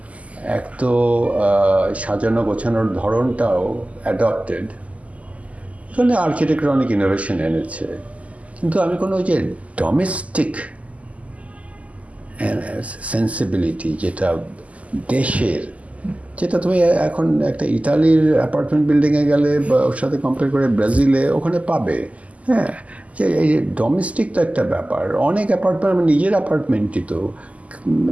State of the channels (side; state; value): left; late; 0.069 ms